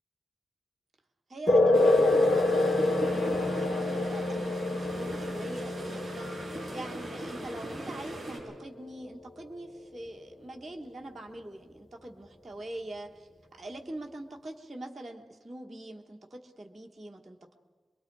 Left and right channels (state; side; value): normal; both; correlation 0.84